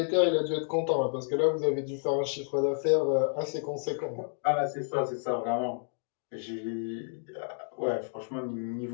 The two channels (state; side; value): silent; right; digital silence